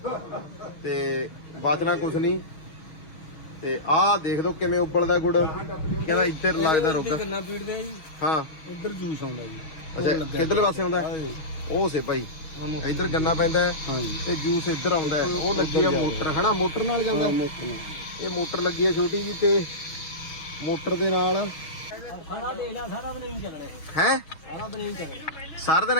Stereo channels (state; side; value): late; right; 6.3 ms